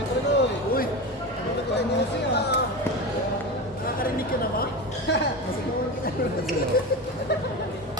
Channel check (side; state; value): both; normal; correlation 0.24